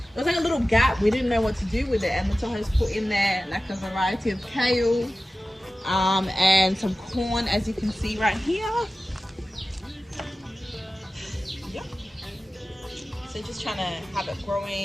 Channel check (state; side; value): normal; both; correlation 0.95